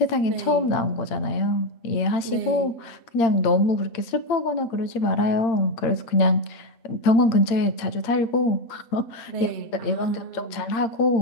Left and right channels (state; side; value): late; right; 8.7 ms